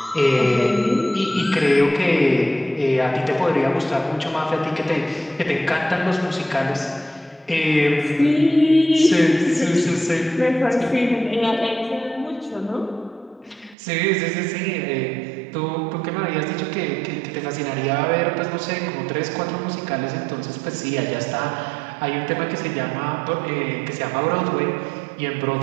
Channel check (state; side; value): drops out; left; at 13.8 s